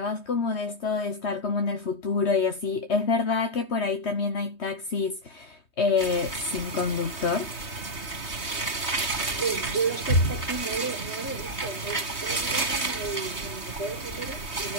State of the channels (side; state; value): right; late; 3.2 ms